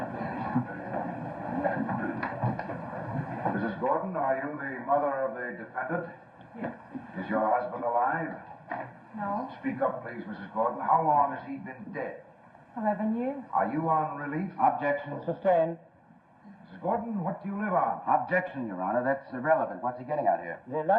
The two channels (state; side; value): identical; both; correlation 1.00